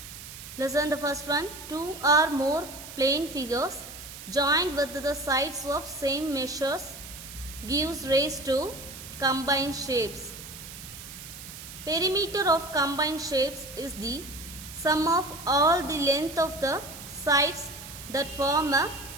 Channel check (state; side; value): noise; right; hiss, 13 dB below the sound